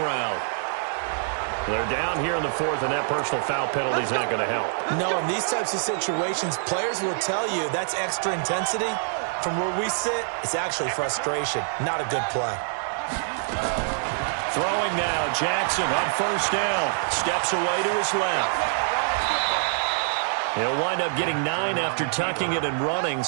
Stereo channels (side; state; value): left; silent; 61 dB below the other